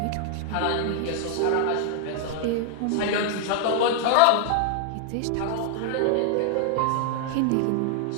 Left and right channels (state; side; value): different; both; correlation 0.00